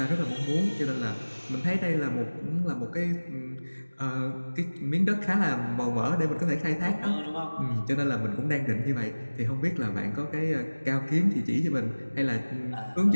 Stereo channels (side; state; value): both; inverted; correlation -1.00